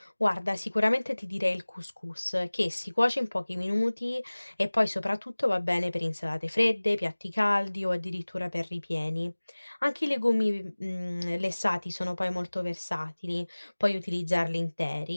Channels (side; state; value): both; inverted; correlation -1.00